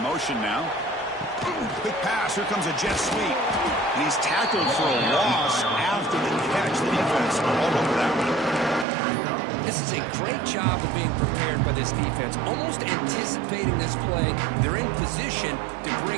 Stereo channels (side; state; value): left; drops out; at 8.8 s